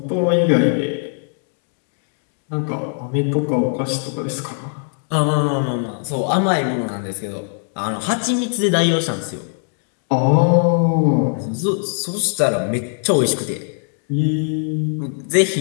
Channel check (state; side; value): silent; right; 66 dB below the other